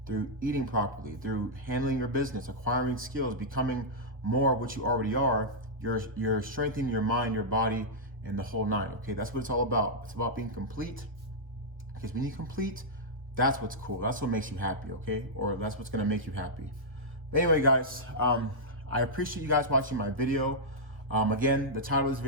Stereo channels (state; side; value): late; left; 1.2 ms